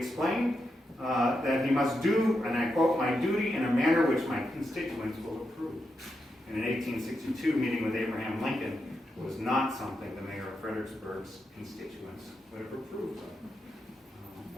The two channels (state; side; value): normal; both; correlation 0.85